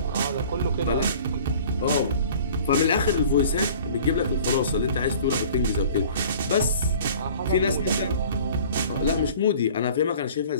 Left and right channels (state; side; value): inverted; both; correlation -0.47